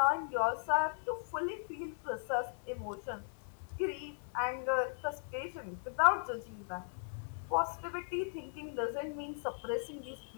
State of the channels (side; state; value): right; silent; digital silence